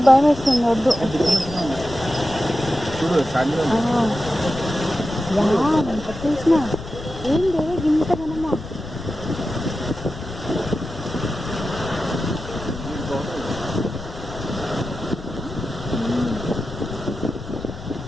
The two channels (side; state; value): left; noise; rumble, 12 dB below the sound